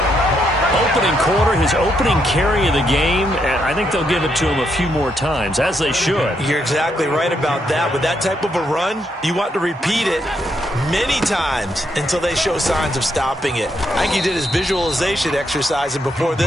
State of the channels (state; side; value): normal; both; correlation 0.77